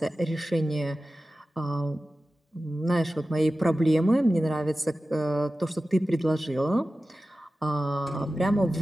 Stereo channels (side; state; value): both; normal; correlation 0.95